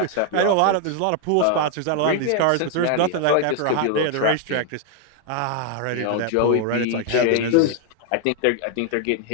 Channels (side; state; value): both; different; correlation 0.00